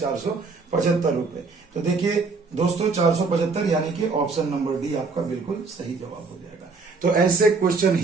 रुपए। तो देखिए दोस्तों 475 यानी कि ऑप्शन नंबर डी आपका बिल्कुल सही जवाब हो जाएगा। तो ऐसे क्वेश्चन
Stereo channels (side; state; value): left; quieter; 4.3 dB